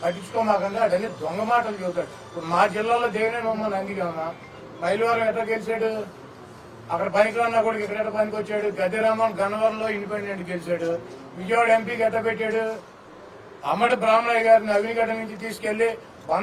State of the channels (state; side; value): identical; both; correlation 1.00